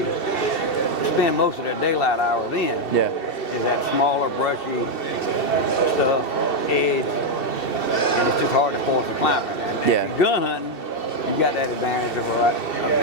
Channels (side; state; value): right; late; 2.7 ms